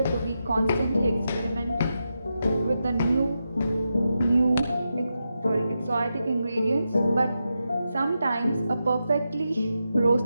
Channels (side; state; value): both; inverted; correlation -0.88